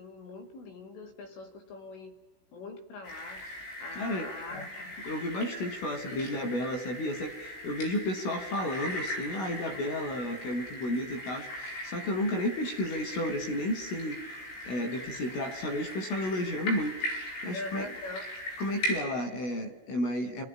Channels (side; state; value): right; late; 16 ms